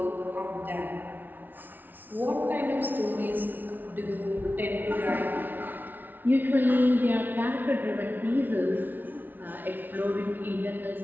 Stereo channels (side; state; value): left; late; 0.087 ms